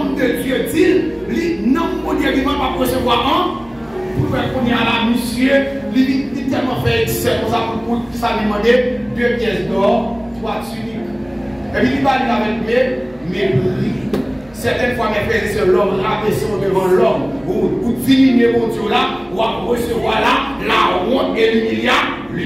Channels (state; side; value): noise; right; hum, 26 dB below the sound